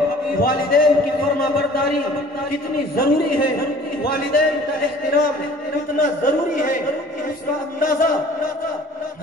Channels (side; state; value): both; normal; correlation 0.49